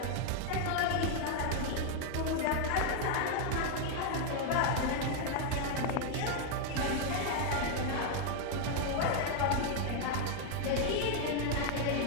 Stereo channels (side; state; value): both; different; correlation 0.00